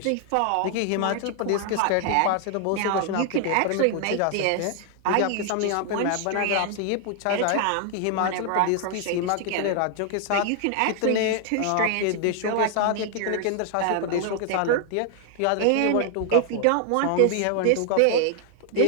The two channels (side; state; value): both; different; correlation 0.00